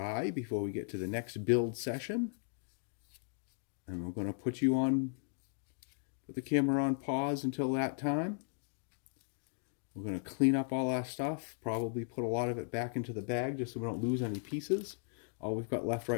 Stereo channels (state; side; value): silent; right; digital silence